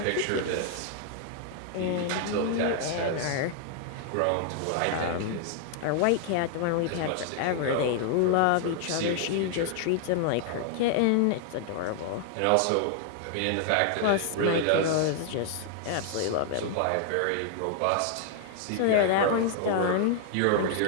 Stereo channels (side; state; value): both; different; correlation 0.00